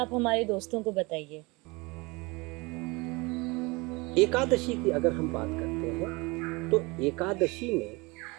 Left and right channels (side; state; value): left; quieter; 25.5 dB